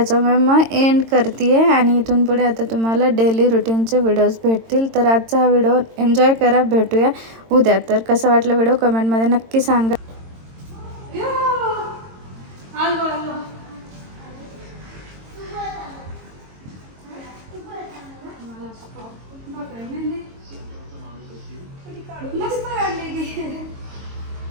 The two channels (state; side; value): late; left; 22 ms